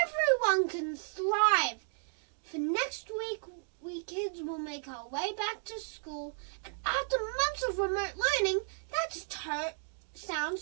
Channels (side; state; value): left; silent; digital silence